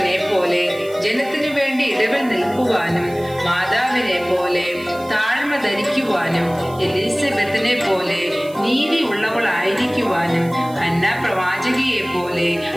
പോലെ ജനത്തിനു വേണ്ടി ഇടവിൽ നിൽക്കുവാനും മാതാവിനെ പോലെ താഴ്മ ധരിക്കുവാനും എലിസബത്തിനെ പോലെ നീതി ഉള്ളവളായിരിക്കുവാനും ഹന്ന പ്രവാചകിയെ പോലെ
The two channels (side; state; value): right; noise; hiss, 22 dB below the sound